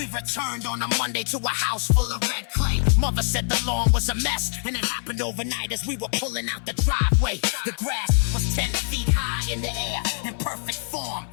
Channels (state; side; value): silent; right; 56 dB below the other